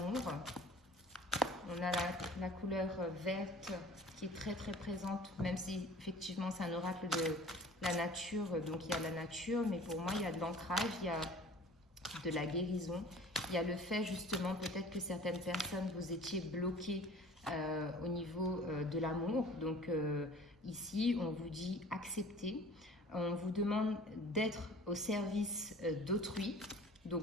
On a la couleur verte qui est très très présente, même si effectivement c'est un oracle de la nature, donc il y a la nature, mais pour moi il y a de l'ancrage, il y a de la guérison, il y a le fait justement peut-être que certaines personnes vous étiez bloquées au niveau de l'amour, donc ici on vous dit accepter, on vous demande d'être au service d'autrui,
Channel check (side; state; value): both; normal; correlation 0.46